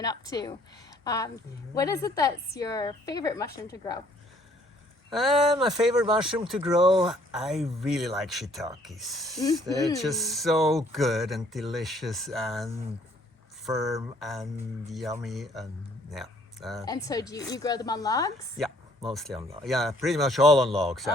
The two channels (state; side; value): normal; both; correlation 0.62